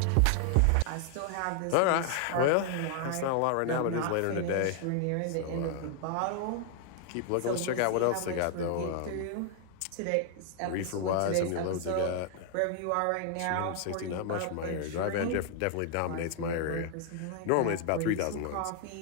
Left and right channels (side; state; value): both; different; correlation 0.00